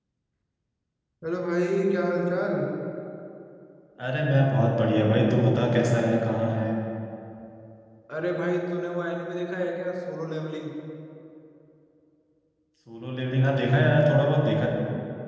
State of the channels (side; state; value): both; identical; correlation 1.00